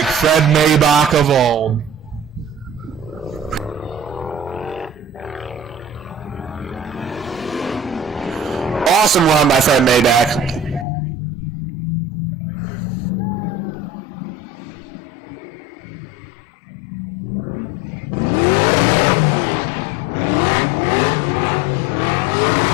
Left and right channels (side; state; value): right; drops out; at 10.9 s